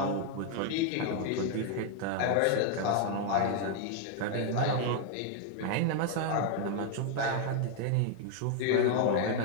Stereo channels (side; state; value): both; different; correlation 0.00